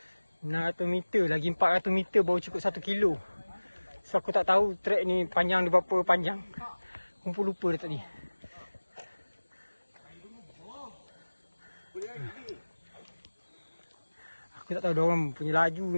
meter. Lagi 400 meter baru cukup 1 kilo. So aku tak tahu trek ni panjang dia berapa panjang. Aku pun lupa dah tadi. Aku tak tahu diorang punya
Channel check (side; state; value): both; inverted; correlation -1.00